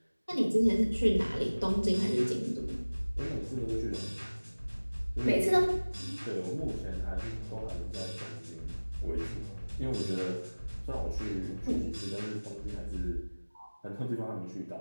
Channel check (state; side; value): inverted; both; correlation -1.00